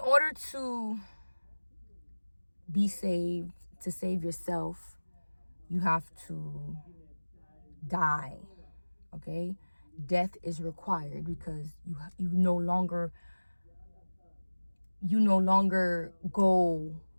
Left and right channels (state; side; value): inverted; both; correlation -1.00